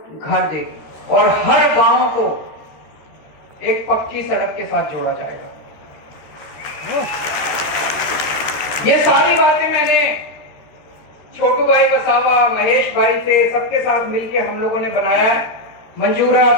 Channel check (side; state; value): right; late; 13 ms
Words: घर देगी। और हर गांव को एक पक्की सड़क के साथ जोड़ा जाएगा। ये सारी बातें मैंने छोटू भाई वसावा, महेश भाई से, सबके साथ मिलके हम लोगों ने बनाया है। मंजूर है